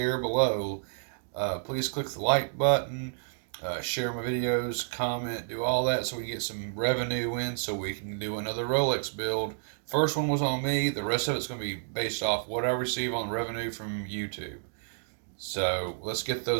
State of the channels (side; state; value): left; silent; digital silence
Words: below. Please click the like button, share my videos, comment, do all that so we can get some revenue in so we can do another Rolex build. First one was on me. The rest of it's going to be based off what I receive on revenue from YouTube. So let's get